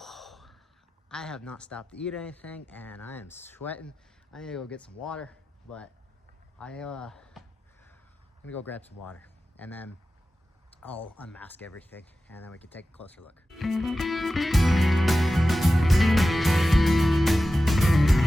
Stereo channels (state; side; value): normal; both; correlation 0.94